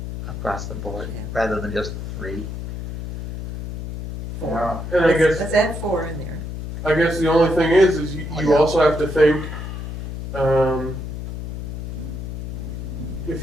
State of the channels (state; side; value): noise; left; hum, 7 dB below the sound